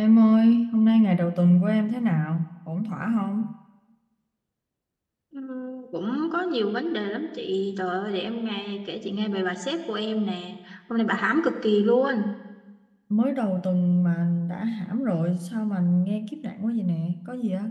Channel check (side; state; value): both; identical; correlation 1.00